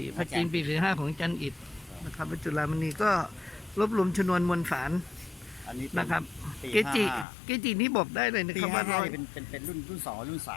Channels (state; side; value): drops out; right; at 7.2 s